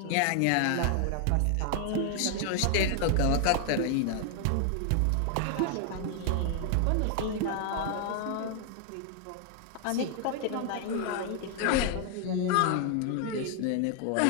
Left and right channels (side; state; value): both; different; correlation 0.00